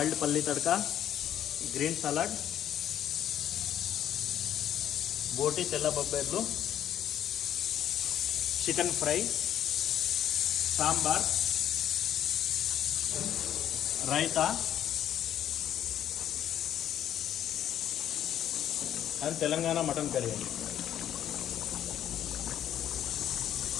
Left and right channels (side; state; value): right; quieter; 10.8 dB